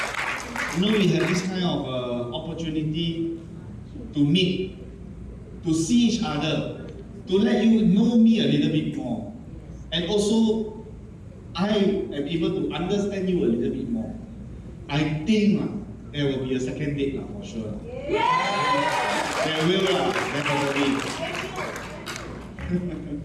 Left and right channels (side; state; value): both; identical; correlation 1.00